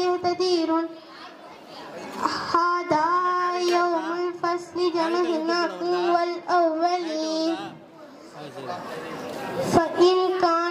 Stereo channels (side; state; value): both; identical; correlation 1.00